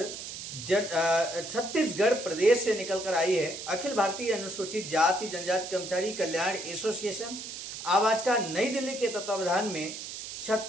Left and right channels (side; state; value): right; noise; hiss, 9 dB below the sound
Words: छत्तीसगढ़ प्रदेश से निकलकर आई है। अखिल भारतीय अनुसूचित जाति जनजाति कर्मचारी कल्याण एसोसिएशन आवाज का नई दिल्ली के तत्वावधान में